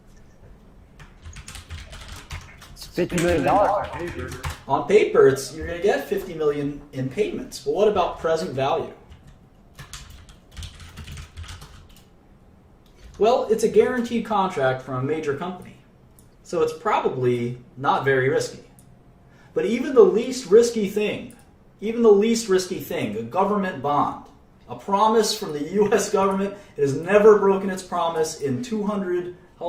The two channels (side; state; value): both; identical; correlation 1.00